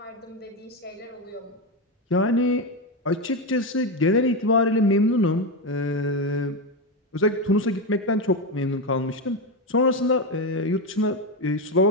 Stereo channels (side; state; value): both; normal; correlation 0.12